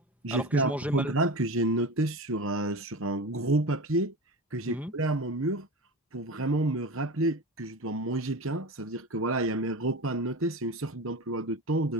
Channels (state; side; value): normal; both; correlation 0.29